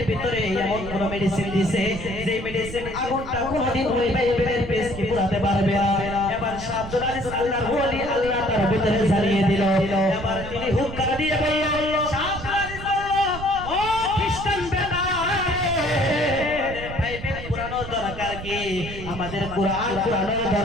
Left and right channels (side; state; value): right; noise; rumble, 10 dB below the sound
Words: ভিতরে এমন কোন মেডিসিন দিয়েছে যে মেডিসিন আগুনটা কোনদিন ওই বাইবেলের পেজকে পুরাতে পারবে না। এবার শাহ আব্দুল আজিজ আল্লাহর ওলি, আল্লাহ তার ভিতরে জ্বালিয়ে দিল। এবার তিনি হুঙ্কার দিয়ে বলল, শাহ আব্দুল আজিজ বলল, ও খ্রিস্টান বেটা, বাইবেল পুরানোর দরকার কি? আমাদের কোরআন পুরানোর